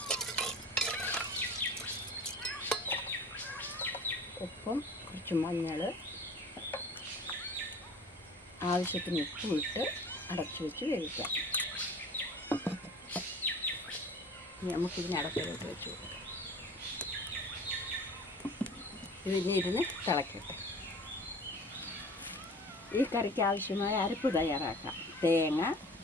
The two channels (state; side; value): normal; both; correlation 0.43